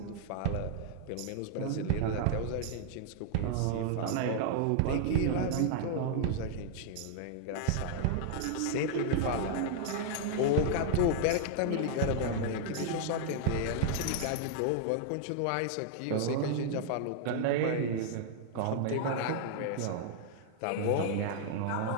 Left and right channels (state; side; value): different; both; correlation -0.01